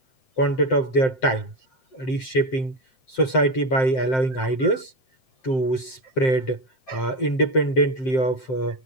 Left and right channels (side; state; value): right; late; 7.7 ms